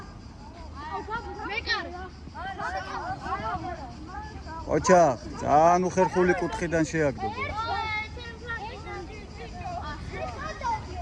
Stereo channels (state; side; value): identical; both; correlation 1.00